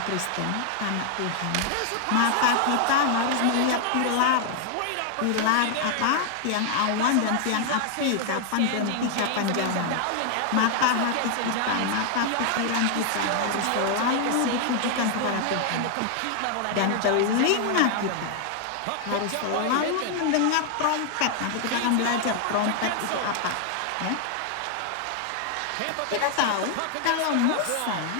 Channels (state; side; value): different; both; correlation 0.00